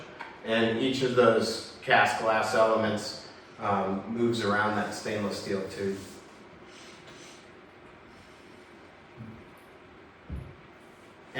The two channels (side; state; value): both; identical; correlation 1.00